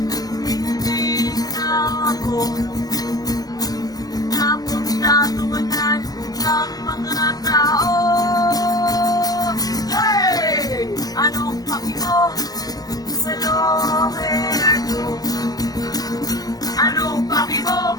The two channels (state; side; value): late; right; 0.18 ms